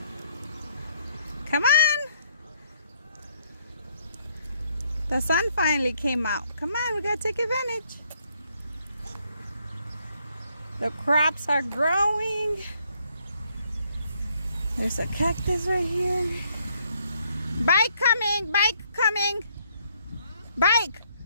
Come on! The sun finally came out. Come on, we gotta take advantage. The crops are growing. There's a cactus right here. Bike coming! Bike coming! Bike!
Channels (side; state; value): both; inverted; correlation -0.69